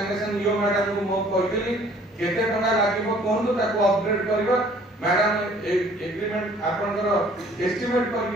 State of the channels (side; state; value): both; normal; correlation 0.56